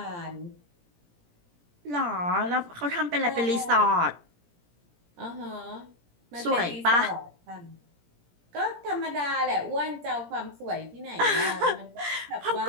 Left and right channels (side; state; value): left; late; 17 ms